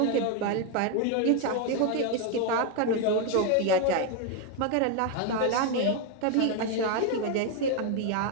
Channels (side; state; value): both; different; correlation 0.01